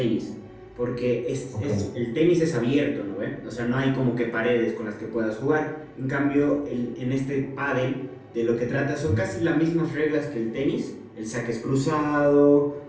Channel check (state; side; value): identical; both; correlation 1.00